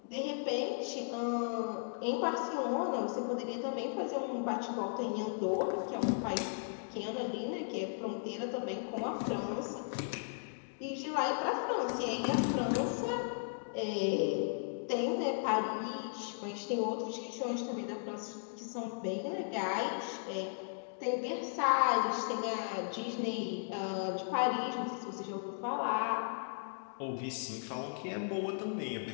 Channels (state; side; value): silent; right; digital silence